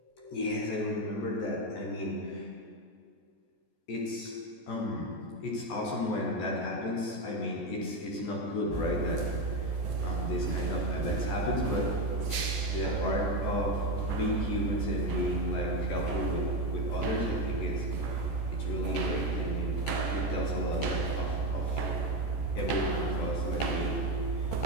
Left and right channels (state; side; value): late; right; 14 ms